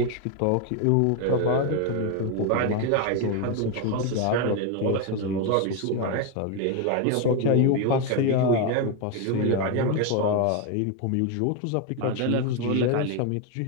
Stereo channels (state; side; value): different; both; correlation 0.02